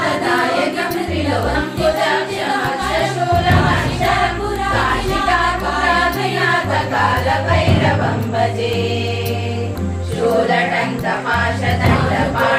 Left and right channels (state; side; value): identical; both; correlation 1.00